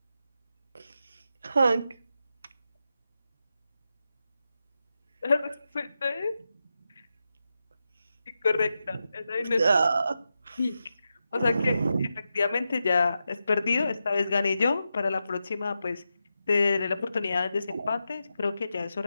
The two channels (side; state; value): both; inverted; correlation -0.89